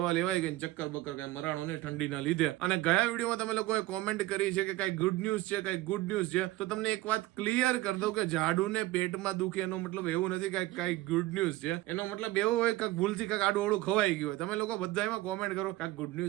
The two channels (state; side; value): quieter; left; 17.6 dB